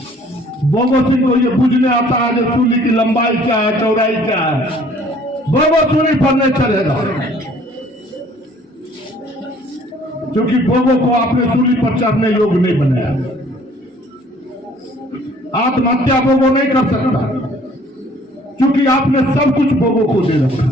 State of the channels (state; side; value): normal; both; correlation 0.56